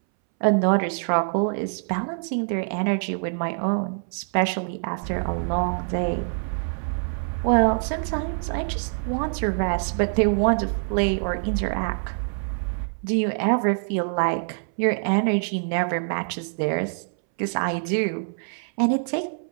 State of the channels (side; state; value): left; silent; 62 dB below the other